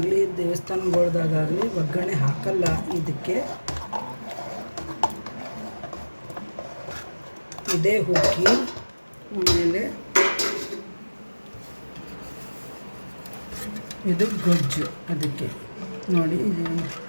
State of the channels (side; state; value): both; inverted; correlation -1.00